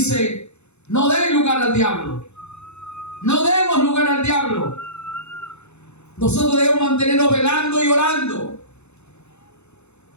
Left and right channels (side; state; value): right; late; 0.81 ms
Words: no den lugar al diablo. No demos lugar al diablo. Nosotros debemos mantenernos velando y orando.